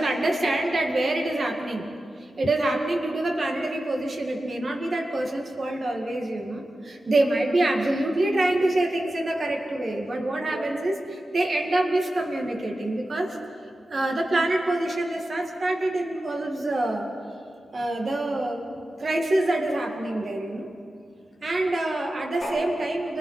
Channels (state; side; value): normal; both; correlation 0.93